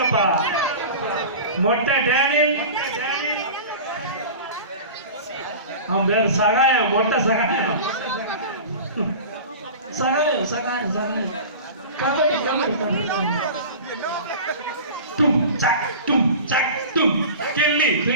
மொட்டை டேனியல், அவன் பேர் சகாயம். மொட்டை சகாயம். தும் சக் தும் கெல்லி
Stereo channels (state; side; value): inverted; both; correlation -0.35